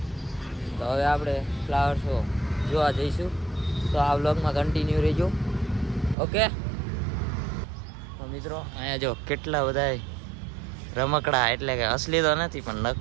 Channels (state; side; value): drops out; left; at 6.2 s